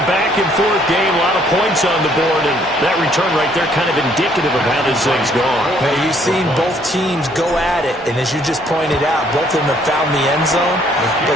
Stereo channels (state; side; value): normal; both; correlation 0.64